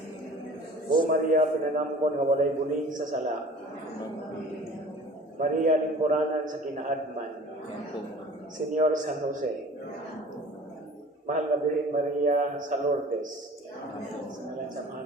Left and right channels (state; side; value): normal; both; correlation 0.45